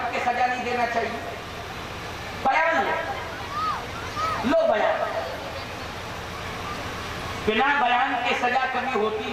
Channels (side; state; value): both; identical; correlation 1.00